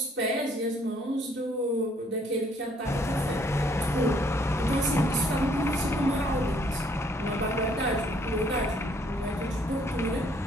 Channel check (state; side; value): normal; both; correlation 0.65